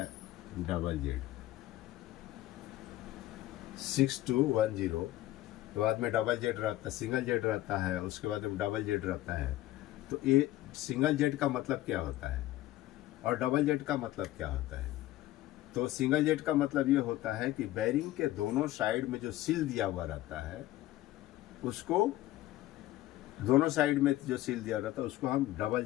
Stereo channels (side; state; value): right; quieter; 15.5 dB